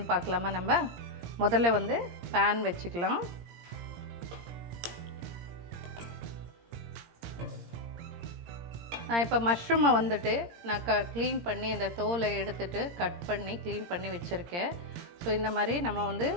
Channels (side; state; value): left; late; 17 ms